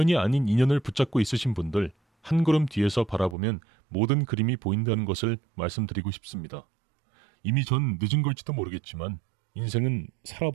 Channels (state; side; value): drops out; left; at 3.4 s